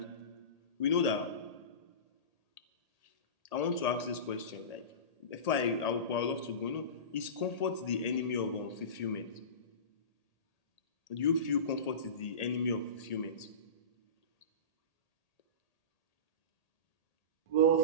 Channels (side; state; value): right; late; 1.8 ms